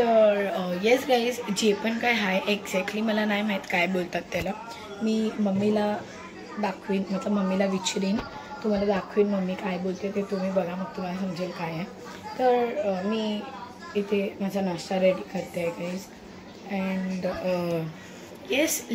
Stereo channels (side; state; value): both; identical; correlation 1.00